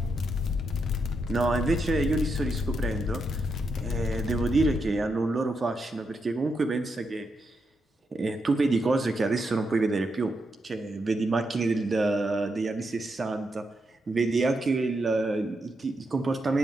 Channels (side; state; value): both; normal; correlation 0.83